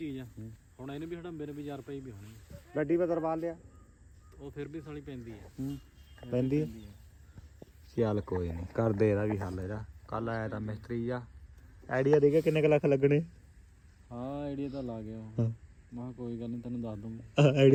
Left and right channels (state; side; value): identical; both; correlation 1.00